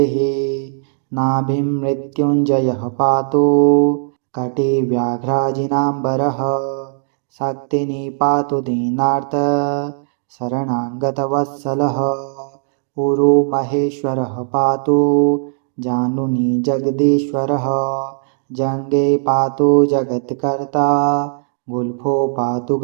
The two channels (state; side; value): silent; left; digital silence